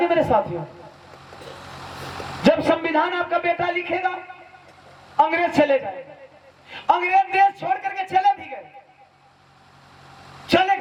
मेरे साथियों, जब संविधान आपका बेटा लिखेगा अंग्रेज चले जाएगा। अंग्रेज देश छोड़ करके चले भी गए, चले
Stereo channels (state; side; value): identical; both; correlation 1.00